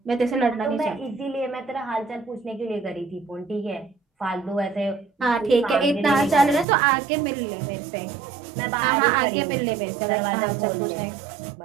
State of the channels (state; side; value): drops out; left; at 6.7 s